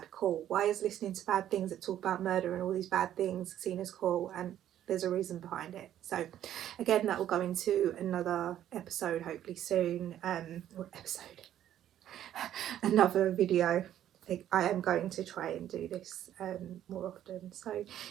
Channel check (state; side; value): quieter; left; 11.4 dB